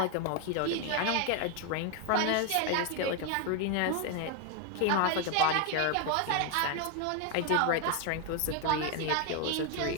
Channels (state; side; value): different; both; correlation 0.01